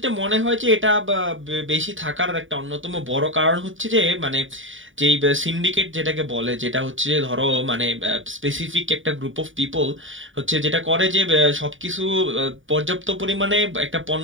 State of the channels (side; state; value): left; late; 0.57 ms